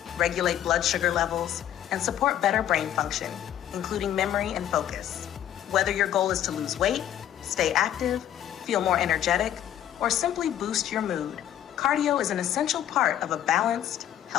regulate blood sugar levels, and support better brain function, including memory and focus. Whether your goal is to lose weight, stay active, feel more energetic, or simply boost your mood, cardio is an essential part of a balanced,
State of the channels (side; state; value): right; quieter; 11.1 dB